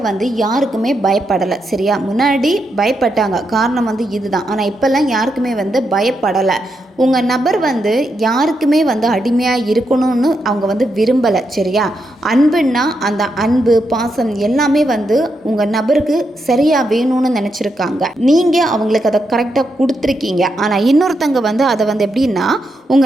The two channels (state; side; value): normal; both; correlation 0.83